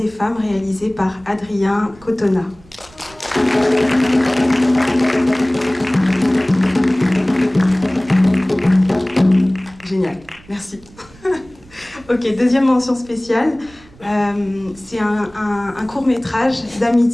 femmes, réalisé par Adrien Cotona. Génial, merci. Ok, deuxième mention spéciale, c'est un court-métrage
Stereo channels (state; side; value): noise; right; rumble, 25 dB below the sound